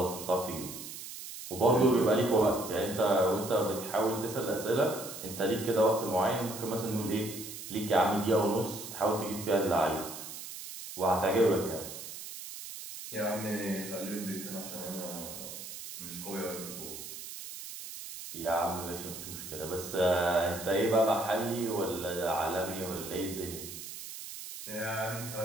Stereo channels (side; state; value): right; noise; hiss, 10 dB below the sound